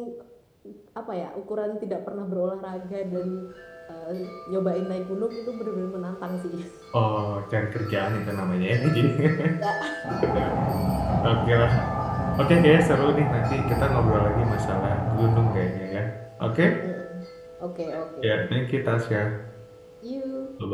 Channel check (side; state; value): both; identical; correlation 1.00